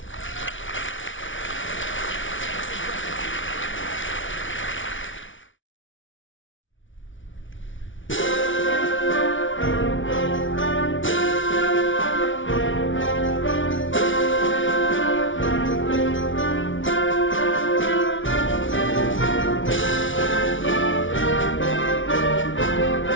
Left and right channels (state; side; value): late; right; 0.56 ms